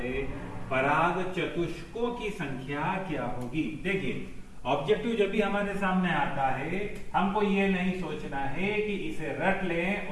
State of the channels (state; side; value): identical; both; correlation 1.00